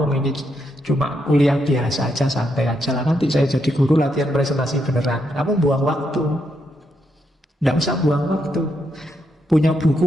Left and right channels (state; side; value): normal; both; correlation 0.80